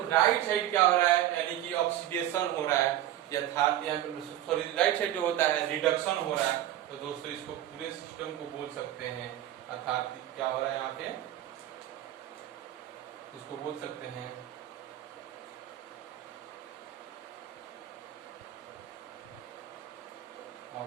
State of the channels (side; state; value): left; quieter; 12.9 dB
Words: राइट साइड क्या हो रहा है, यानी कि ऑक्सीडेशन हो रहा है, यथार्थ यहाँ पे सॉरी राइट साइड जो होता है रिडक्शन हो रहा है। तो दोस्तों इसको पूरे सिस्टम को बोल सकते हैं, अर्थात क्या हो रहा है यहाँ पे, इसको बोल सकते हैं